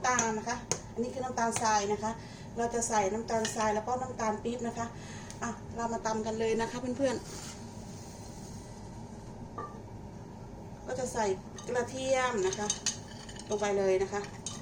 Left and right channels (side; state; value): both; identical; correlation 1.00